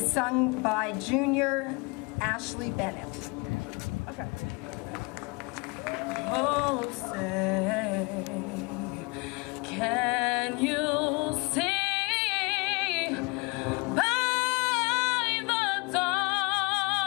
sung by junior Ashley Bennett. Okay. Oh, say, can you see by the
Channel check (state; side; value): quieter; right; 28.7 dB